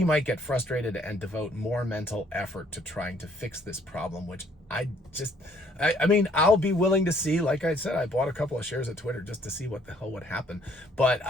might get frustrated and devote more mental effort to trying to fix this problem, which I mean, I'll be willing to see. Like I said, I bought a couple of shares of Twitter just to see what the hell would happen. But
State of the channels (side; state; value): both; normal; correlation 0.63